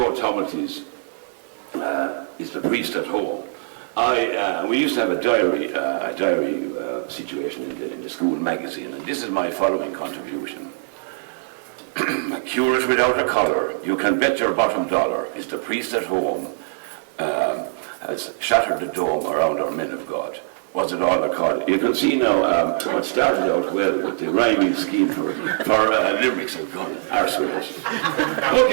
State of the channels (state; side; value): silent; left; 64 dB below the other